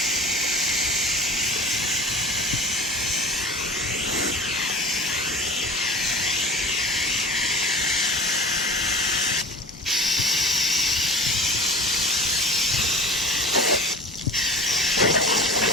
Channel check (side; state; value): both; normal; correlation 0.37